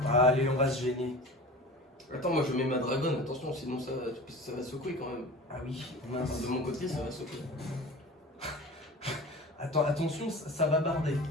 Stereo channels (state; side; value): normal; both; correlation 0.36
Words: Allez on va se gêner. Attends moi je mets ma dragonne, attention sinon ça va secouer quand même. Ah oui. Enfin, Mince. de mon côté ça va secouer. Attends attention ça va barder.